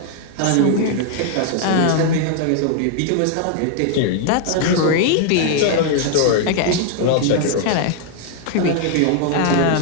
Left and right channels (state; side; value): different; both; correlation 0.00